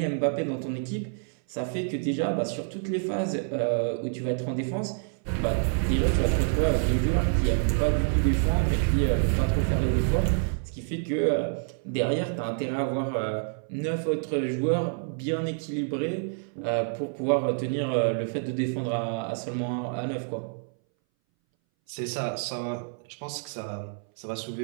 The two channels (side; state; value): left; silent; 60 dB below the other